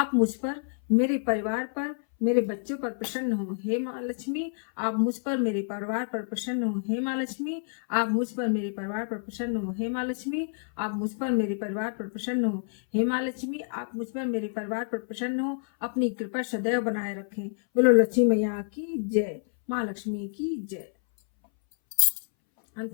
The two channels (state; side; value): silent; right; 59 dB below the other